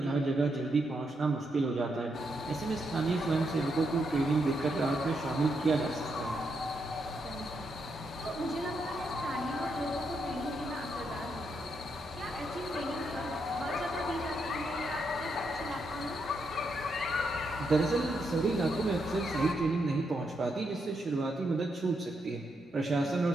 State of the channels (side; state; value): both; normal; correlation 0.80